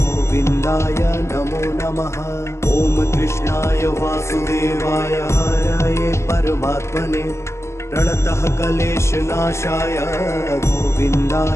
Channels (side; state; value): right; late; 0.13 ms